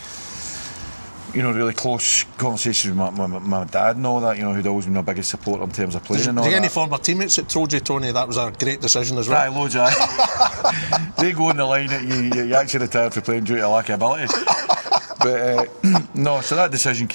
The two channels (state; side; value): inverted; both; correlation -1.00